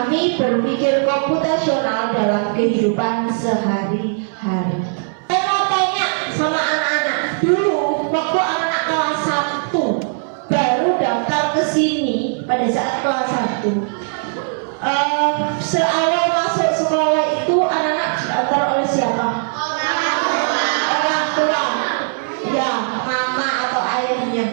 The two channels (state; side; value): silent; left; 67 dB below the other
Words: berpikir komputasional dalam kehidupan sehari-hari. Saya mau tanya sama anak-anak, dulu waktu anak kelas 1 baru daftar ke sini pada saat kelas 1, seawal masuk sekolah itu anak-anak diantar oleh siapa? Orang tua. Ya, mama atau